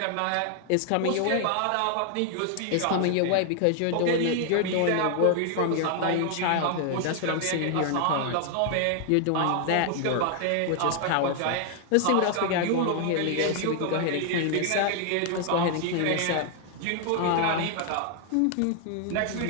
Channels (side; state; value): both; different; correlation 0.00